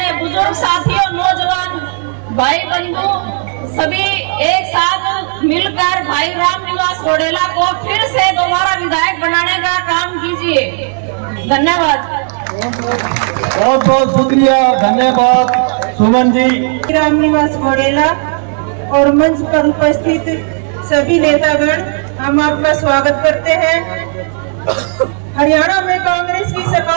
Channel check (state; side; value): silent; left; 56 dB below the other